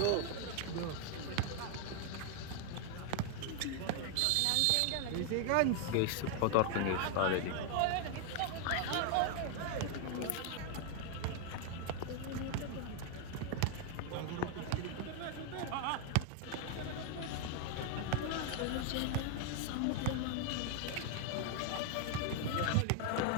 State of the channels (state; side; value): different; both; correlation 0.00